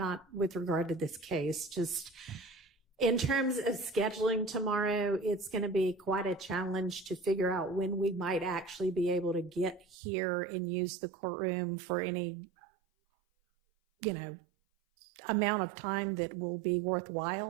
with regard to this case, just in terms of scheduling tomorrow. It's going to be quite a challenge to figure out when we might actually be able to get here and use the courtroom for any, amount of time that will be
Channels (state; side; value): drops out; left; at 10.0 s